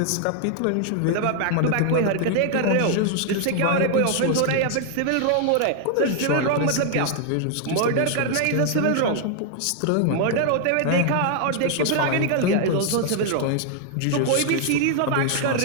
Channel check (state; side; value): different; both; correlation 0.00